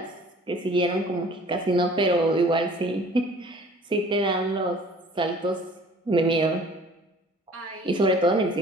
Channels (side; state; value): both; normal; correlation 0.50